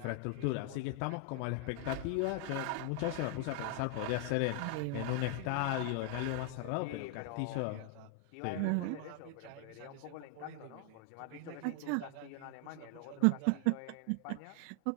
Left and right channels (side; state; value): both; different; correlation 0.00